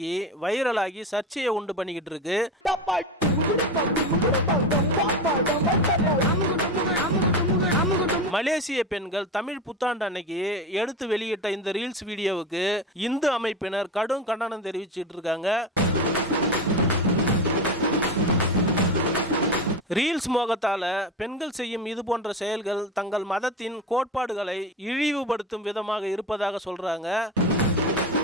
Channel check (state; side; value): normal; both; correlation 0.22